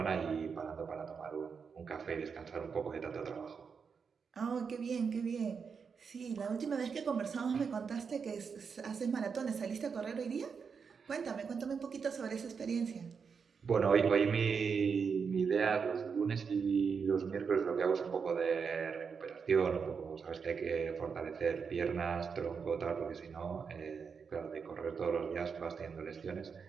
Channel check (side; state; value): left; quieter; 5.9 dB